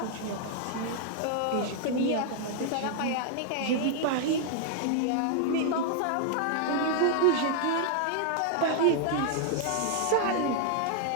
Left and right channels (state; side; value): different; both; correlation 0.00